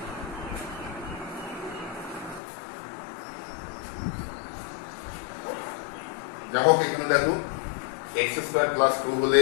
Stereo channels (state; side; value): drops out; right; at 2.4 s